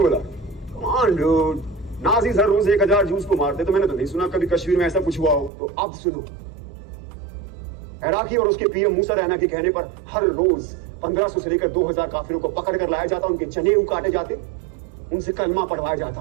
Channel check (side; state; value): left; drops out; at 5.5 s